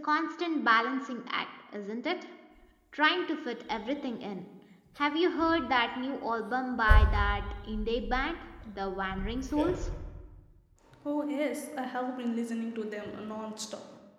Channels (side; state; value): both; identical; correlation 1.00